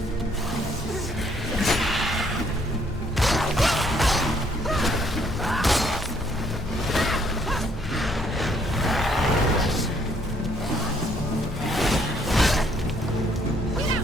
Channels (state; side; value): normal; both; correlation 0.66